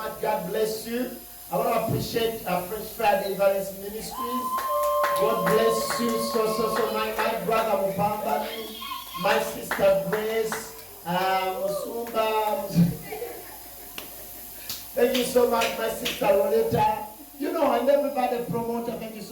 God bless you. I want to appreciate French Friday Evangelist Ministries. God bless you so much. My brother Mupambani, my sister Grace, Musumba. Thank you so much, my sister Roleta. You know, and everybody promoter, thank you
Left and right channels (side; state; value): both; identical; correlation 1.00